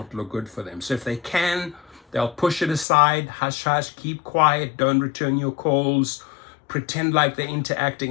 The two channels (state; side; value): drops out; right; at 2.9 s